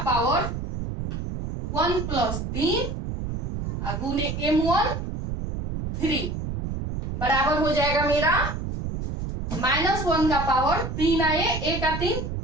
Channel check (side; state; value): right; noise; rumble, 4 dB below the sound